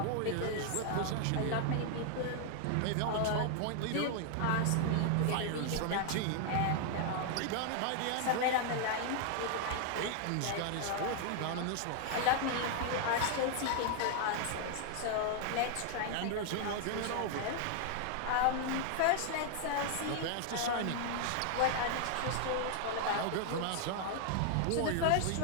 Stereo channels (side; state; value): both; different; correlation 0.00